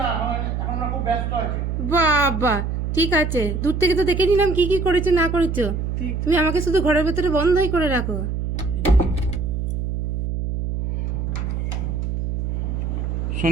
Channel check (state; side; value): noise; right; hum, 2 dB below the sound